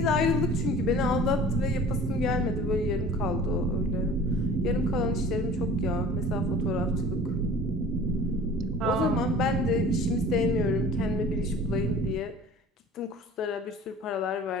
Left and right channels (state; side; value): normal; both; correlation 0.44